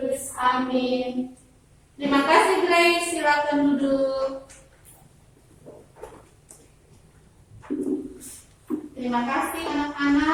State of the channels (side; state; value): both; identical; correlation 1.00